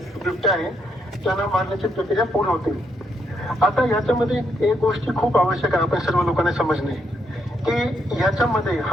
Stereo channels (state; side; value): normal; both; correlation 0.77